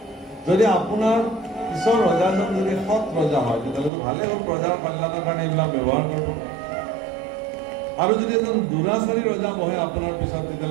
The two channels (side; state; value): left; drops out; at 3.9 s